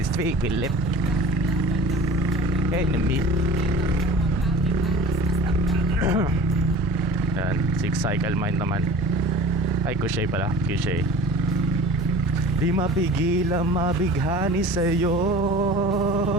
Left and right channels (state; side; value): normal; both; correlation 0.41